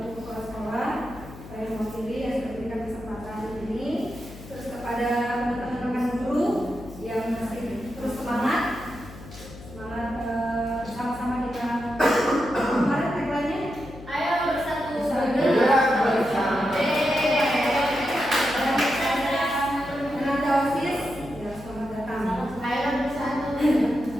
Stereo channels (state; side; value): noise; left; hum, 16 dB below the sound